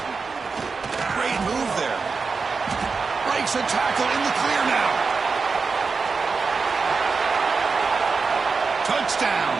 Great move there. Breaks a tackle in the clear now. Touchdown,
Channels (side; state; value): left; quieter; 4.7 dB